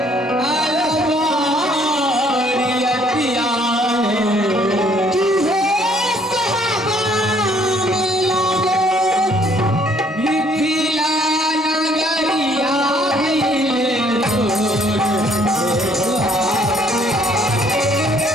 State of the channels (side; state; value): both; normal; correlation 0.63